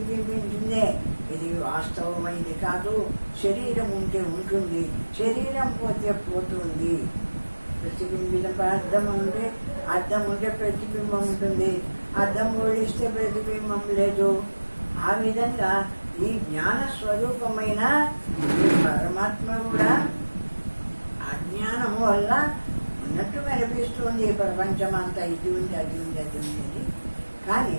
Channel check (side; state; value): both; inverted; correlation -1.00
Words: ఇది వాస్తవమైంది కాదు. శరీరం ఉంటే ఉంటుంది, శరీరం పోతే పోతుంది. ప్రతిబింబిత అద్దం ఉంటే ప్రతిబింబం ఉంటుంది, అద్దం ఓడిస్తే ప్రతిబింబం లేదు. ఆ విధంగా ఈ జ్ఞాన స్వరూపమైన ఈ పరమాత్మ కూడా అజ్ఞానము వల్ల ఉన్నట్టు కనిపిస్తుంది. ప్రపంచం అంతా ఇది ఉంది, అది ఉంది, అది ఉంది అని. కానీ